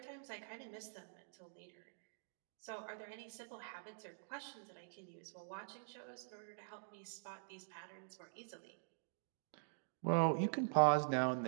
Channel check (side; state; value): left; silent; digital silence